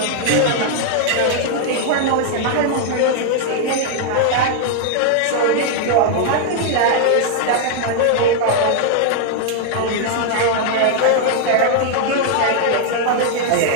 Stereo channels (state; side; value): different; both; correlation 0.00